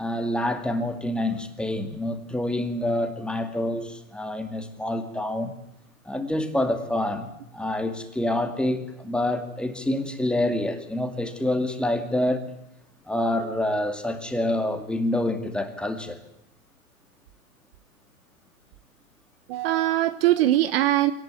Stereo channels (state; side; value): normal; both; correlation 0.58